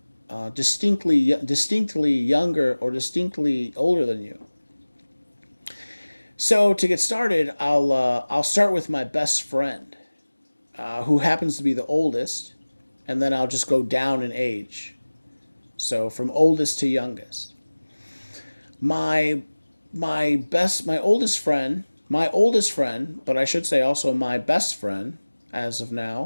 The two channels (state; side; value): inverted; both; correlation -1.00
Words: distinctly younger or distinctly older than you. So to get started, I'll start with my best friend, who happens to be the oldest, and then I'll just go down in age. So from oldest to youngest. My my oldest friend, but I should say also my best friend as of